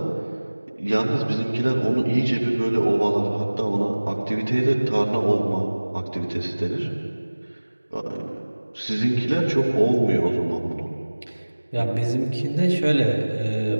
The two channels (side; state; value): both; inverted; correlation -1.00